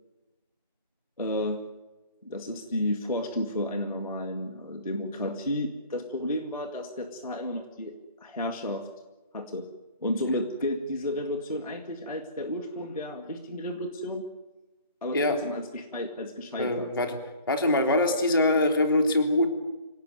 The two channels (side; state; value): both; inverted; correlation -0.48